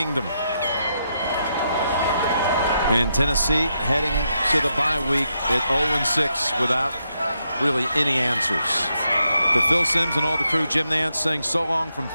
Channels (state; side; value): inverted; both; correlation -0.81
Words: And Tennessee heading to the bye week at 0-6 without really any answers. For Phil Simms and all the crew, Jim Nantz saying so long from